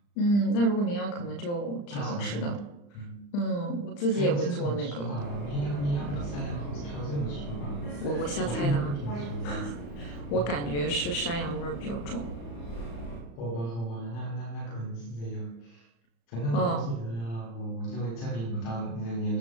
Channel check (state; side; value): late; right; 35 ms